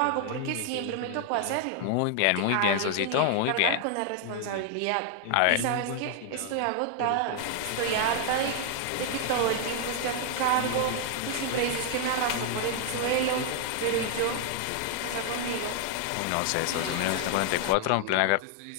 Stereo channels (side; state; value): both; different; correlation 0.00